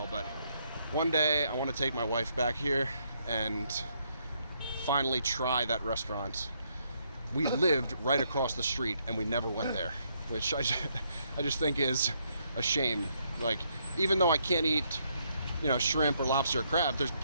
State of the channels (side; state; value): both; inverted; correlation -0.74